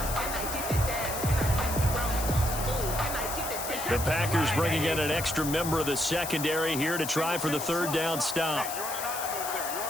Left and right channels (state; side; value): noise; left; hiss, 6 dB below the sound